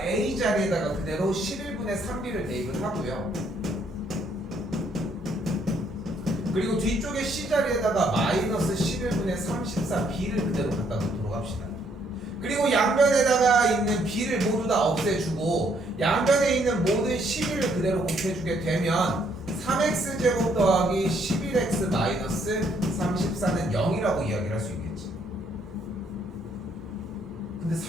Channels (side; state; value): both; normal; correlation 0.69